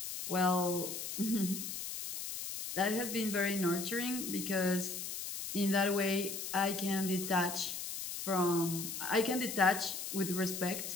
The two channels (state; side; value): noise; left; hiss, 6 dB below the sound